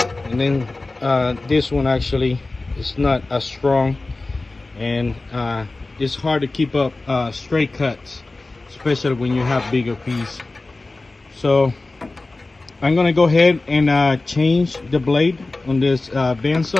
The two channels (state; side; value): quieter; right; 3.2 dB